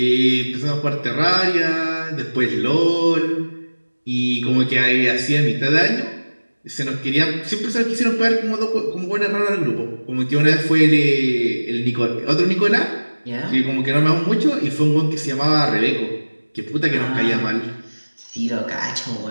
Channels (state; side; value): inverted; both; correlation -1.00